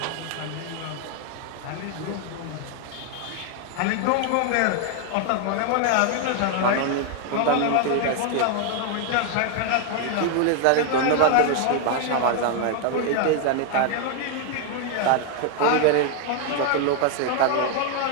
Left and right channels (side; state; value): both; different; correlation 0.00